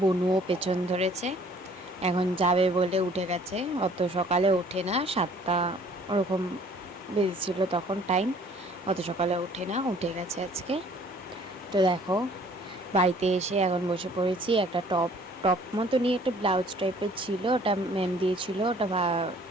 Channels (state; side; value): normal; both; correlation 0.56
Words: বনুও পেছন ধরেছে, এখন যাবে বলে উঠে গেছে। অত সকালে ওঠে না, 7টা ওরকম বেজেছিল তখন টাইম। অত সকালে ওঠে না, উঠে গেছে আজকে। তো দেখো, বাড়িতে এসে এখন বসে পড়েছি। একটা টপ টপ মতো নিয়ে একটা ব্লাউজ টাইপের ছিল, ওটা ম্যাম দিয়েছিল, ওটা